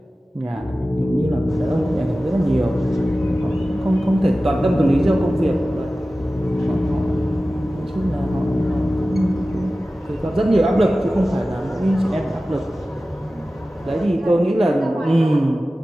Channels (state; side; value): normal; both; correlation 0.95